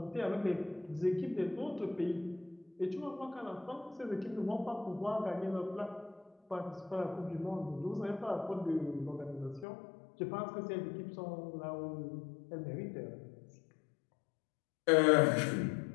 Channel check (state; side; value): drops out; right; at 9.7 s